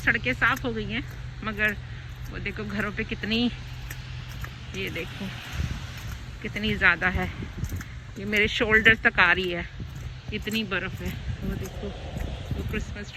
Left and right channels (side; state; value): both; identical; correlation 1.00